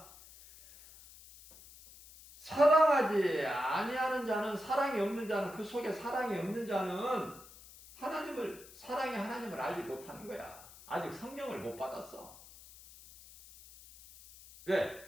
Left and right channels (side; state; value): left; noise; hiss, 19 dB below the sound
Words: 사랑하지 아니하는 자는, 사랑이 없는 자는, 그 속에 사랑이 없는 자는 사랑의 하나님을 알지 못하는 거야. 아직 성령을 못 받았어. 왜?